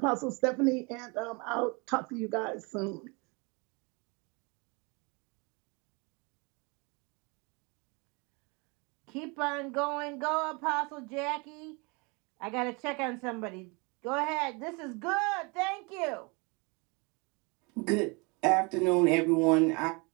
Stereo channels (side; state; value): left; quieter; 29.7 dB